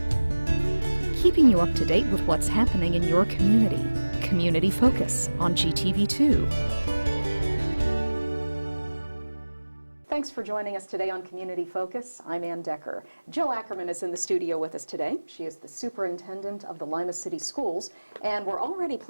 Keeping you up to date with what's happening in your community. Community Focus on GTV2. Thanks for joining us today on Community Focus. I'm Anne Decker. Jill Ackerman is in the studio with us today. She is the superintendent of the Lima City Schools, and we're already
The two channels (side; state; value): both; inverted; correlation -1.00